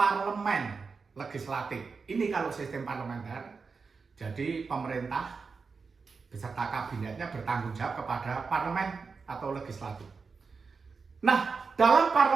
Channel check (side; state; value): left; quieter; 4.9 dB